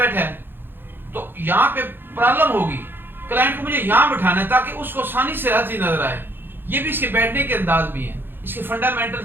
ہے تو یہاں پہ پرابلم ہوگی. کلائنٹ کو مجھے یہاں بٹھانا ہے تاکہ اس کو آسانی سے ہر چیز نظر آئے. یہ بھی اس کے بیٹھنے کے انداز بھی ہیں. اس کے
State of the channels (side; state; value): left; late; 0.10 ms